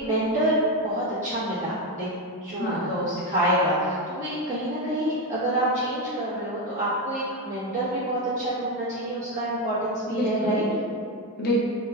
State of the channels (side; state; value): both; normal; correlation 0.11